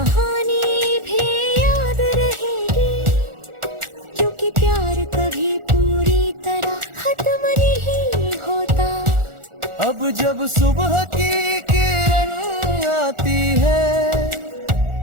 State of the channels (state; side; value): late; left; 1.4 ms